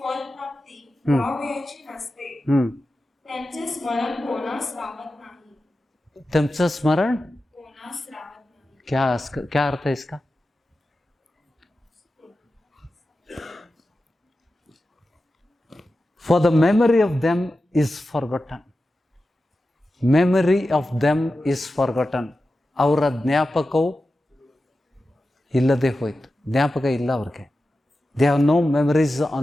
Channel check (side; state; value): both; normal; correlation 0.93